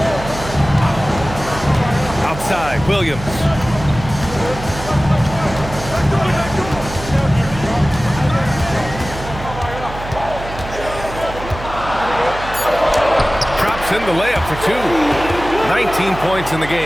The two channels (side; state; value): right; noise; hum, 11 dB below the sound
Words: Outside, Williams. Drops in the layup for 2. 19 points in the